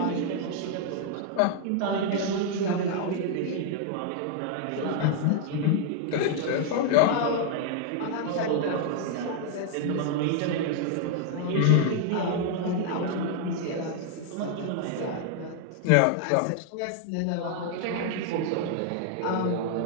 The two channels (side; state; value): both; different; correlation 0.00